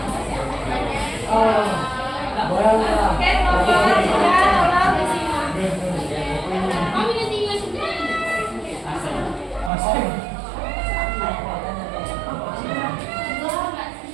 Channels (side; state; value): left; drops out; at 9.7 s